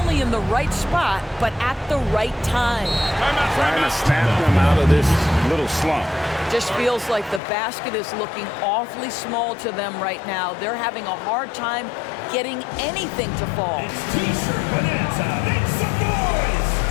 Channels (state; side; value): drops out; right; at 7.4 s